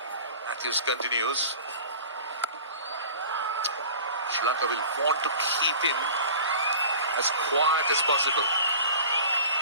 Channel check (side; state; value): both; inverted; correlation -0.40